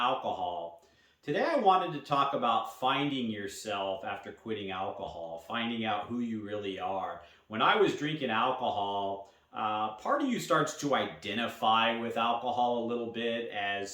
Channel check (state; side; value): identical; both; correlation 1.00